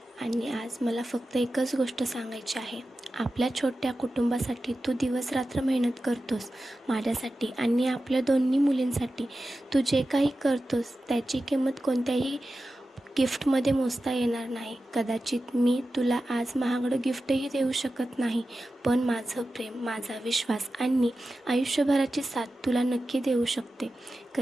आणि आज मला फक्त एकच गोष्ट सांगायची आहे. आपल्या छोट्या कुटुंबासाठी तू दिवसरात्र मेहनत करतोस, माझ्यासाठी आणि आपल्या दोन्ही मुलींसाठी. तू जे काही करतोस त्याची किंमत कोणत्याही गिफ्टमध्ये मोजता येणार नाही. कदाचित मी तुला आज महागडं गिफ्टही देऊ शकत नाही, पण माझं प्रेम, माझा विश्वास आणि आयुष्यभराची साथ तुला नक्की देऊ शकते.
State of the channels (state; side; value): normal; both; correlation 0.93